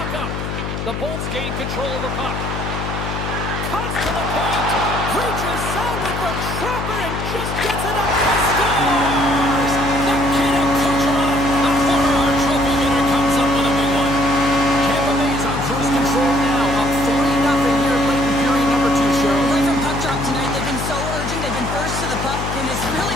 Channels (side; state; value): left; noise; hum, 4 dB below the sound